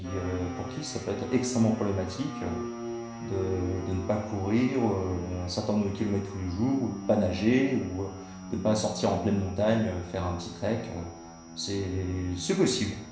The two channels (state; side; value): identical; both; correlation 1.00